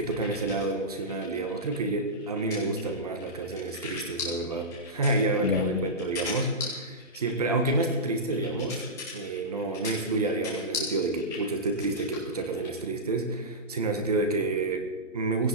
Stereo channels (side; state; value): both; normal; correlation -0.13